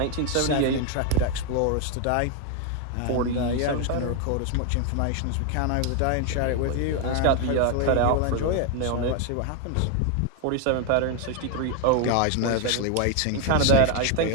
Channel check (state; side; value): different; both; correlation 0.01